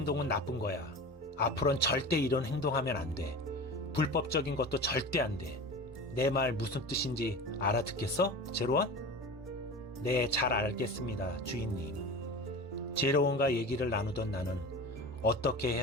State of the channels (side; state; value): both; normal; correlation 0.32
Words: 나쁜 거야. 앞으로는 절대 이런 행동하면 안 돼. 불법적인 것도 절대 안 돼. 내 말 무슨 뜻인지 알아듣겠어, 제로원? 네, 잘 알겠습니다, 주인님. 제로원과 얘기를 나누던 나는 어떻게